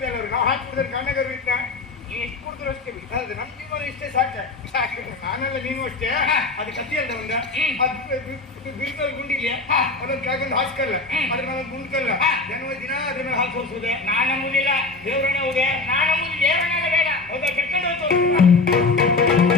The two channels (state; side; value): quieter; right; 3.5 dB